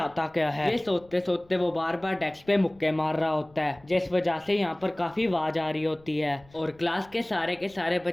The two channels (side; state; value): left; noise; rumble, 28 dB below the sound